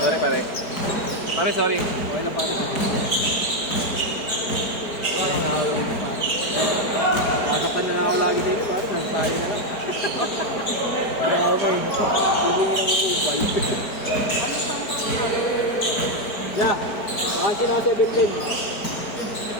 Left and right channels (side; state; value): right; late; 4.7 ms